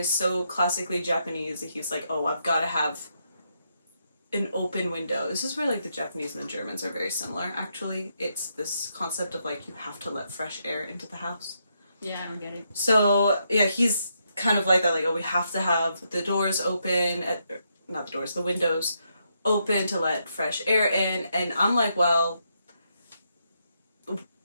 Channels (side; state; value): both; inverted; correlation -0.79